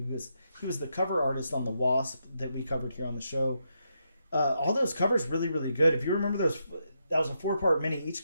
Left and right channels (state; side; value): inverted; both; correlation -0.81